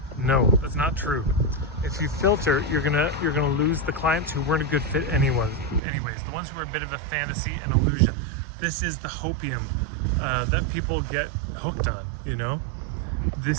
No, that's not true. If you filter, you're gonna lose the clients who weren't a good fit anyways, the ones who are a bit of a fantasy and illusion. This is the hopium that people get hooked on, you know?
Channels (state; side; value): drops out; left; at 5.8 s